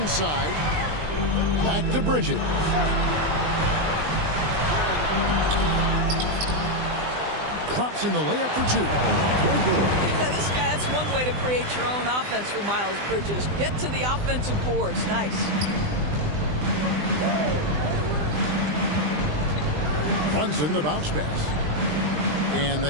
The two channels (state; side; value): late; left; 20 ms